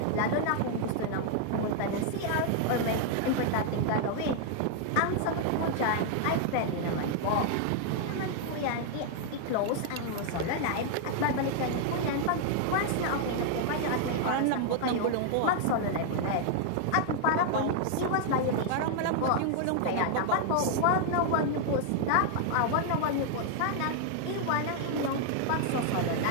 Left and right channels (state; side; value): different; both; correlation 0.00